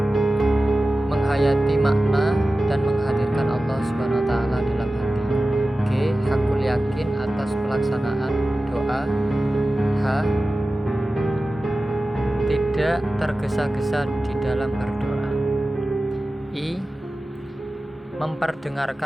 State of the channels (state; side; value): normal; both; correlation 0.95